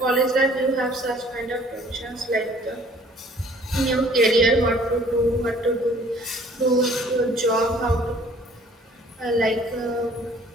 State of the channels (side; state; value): both; normal; correlation 0.55